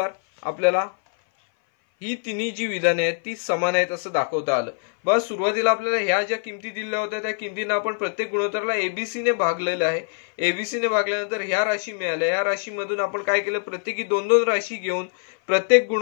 आपल्याला ही तिन्ही जी विधाने आहेत ती समान आहेत असं दाखवता आलं। बस सुरुवातीला आपल्याला ह्या ज्या किमती दिल्या होत्या त्या किमतींना आपण प्रत्येक गुणोत्तराला एबीसी ने भागलेलं आहे। एबीसी ने भागल्यानंतर ह्या राशी मिळाल्या, या राशीमधून आपण काय केलं प्रत्येकी दोन दोन राशी घेऊन प्रत्येक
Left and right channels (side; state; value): right; silent; 58 dB below the other